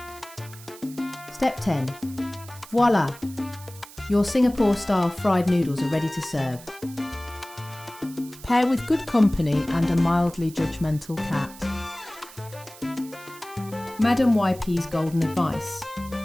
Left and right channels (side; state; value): right; noise; hiss, 19 dB below the sound